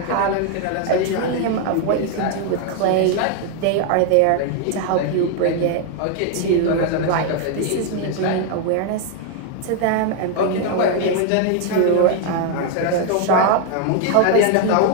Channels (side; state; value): both; different; correlation 0.00